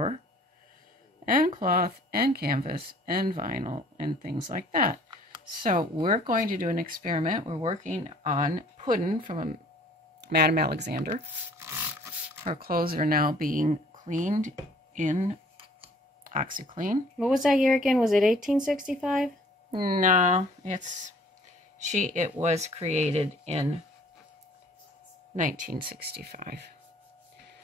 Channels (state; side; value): normal; both; correlation 0.55